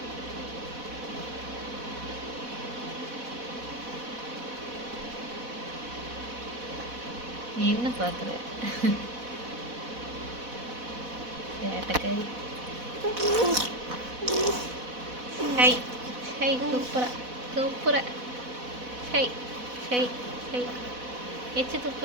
நீ என்ன பார்க்குற? சேட்டைக்காரி. ஹை ஹை துப்புரா துப்புரா ஹை ஹை ஹை எச்சு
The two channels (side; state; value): left; late; 4.1 ms